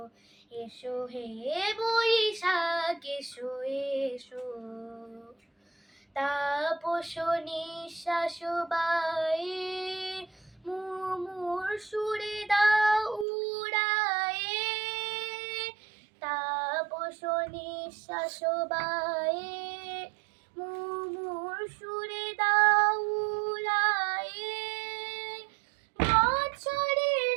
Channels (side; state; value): left; drops out; at 13.2 s